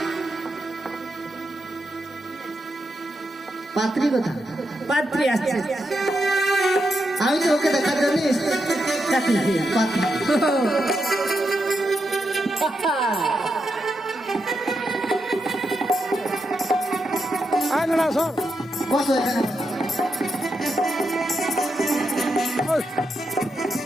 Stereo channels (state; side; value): normal; both; correlation 0.84